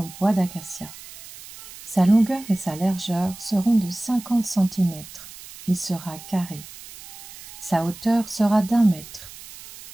bois d'acacia. Sa longueur et sa largeur seront de 50 cm. Il sera carré. Sa hauteur sera d'1 mètre.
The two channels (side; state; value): right; noise; hiss, 16 dB below the sound